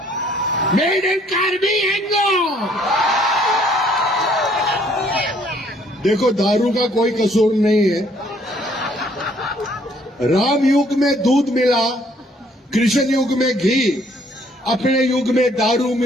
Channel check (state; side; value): normal; both; correlation 0.63